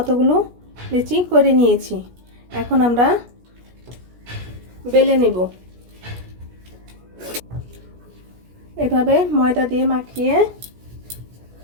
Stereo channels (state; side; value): late; left; 17 ms